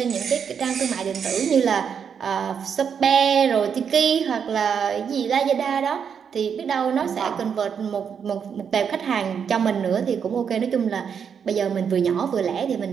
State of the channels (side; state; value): left; quieter; 7.2 dB